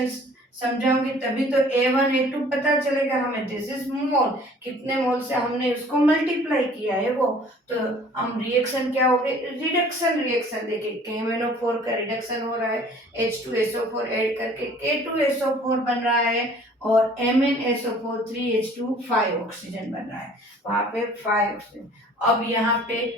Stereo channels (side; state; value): both; normal; correlation 0.52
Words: समझाऊंगी तभी तो A1 A2 पता चलेगा हमें। दिस इज मोल, कितने मोल से हमने उसको मल्टीप्लाई किया है वो। तो हम रिएक्शन क्या हो गए, रिडक्शन रिएक्शन देखें, KMnO4 का रिडक्शन हो रहा है, H2SO4 ऐड करके K2SO4 बन रहा है और MnSO4 3H2 5 ऑक्सीजन बन रहा है, वहां पे 5 ऑक्सीजन। अब यहाँ पे